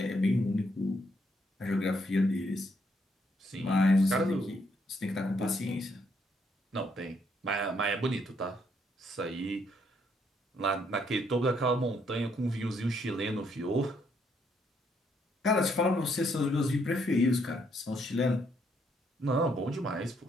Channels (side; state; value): both; normal; correlation 0.72